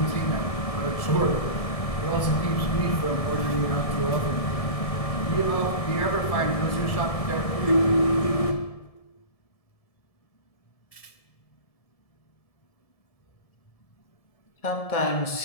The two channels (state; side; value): late; right; 1.7 ms